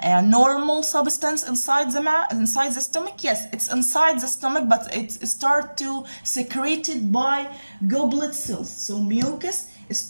normal substance inside the stomach. Yes, it's inside the stomach, but it starts to secreted by goblet cells. So mucus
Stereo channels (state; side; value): inverted; both; correlation -1.00